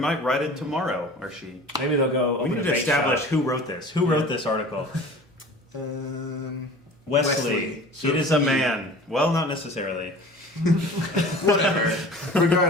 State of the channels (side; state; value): both; normal; correlation 0.41